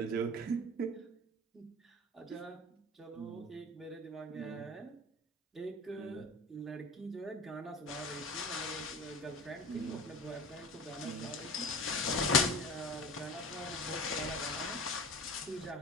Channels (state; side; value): normal; both; correlation 0.35